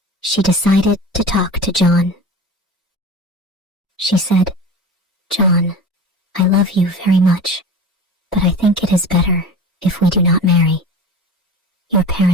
she decided to talk to John. She said, "John, I love you very much, but I think it is better if we do not marry. Your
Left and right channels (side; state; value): both; normal; correlation 0.34